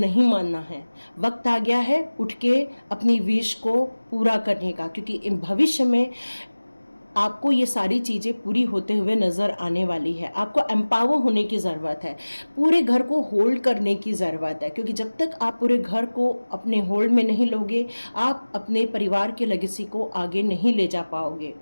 मानना है, वक्त आ गया है उठ के अपनी विश को पूरा करने का, क्योंकि भविष्य में आपको ये सारी चीज़ें पूरी होते हुए नज़र आने वाली है। आपको एम्पावर होने की ज़रूरत है, पूरे घर को होल्ड करने की ज़रूरत है, क्योंकि जब तक आप पूरे घर को अपने होल्ड में नहीं लोगे, आप अपने परिवार के लेगेसी को आगे नहीं ले जा पाओगे।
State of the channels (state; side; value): inverted; both; correlation -1.00